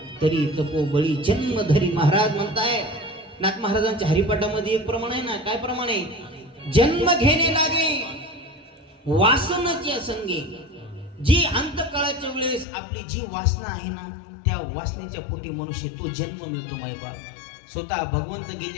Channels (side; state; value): right; drops out; at 12.7 s